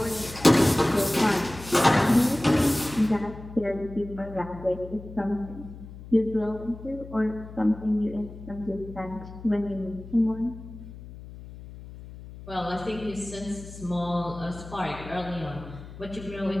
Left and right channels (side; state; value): left; noise; hum, 14 dB below the sound